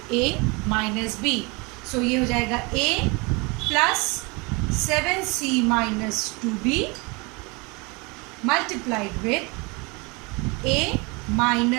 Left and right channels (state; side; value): quieter; left; 28.1 dB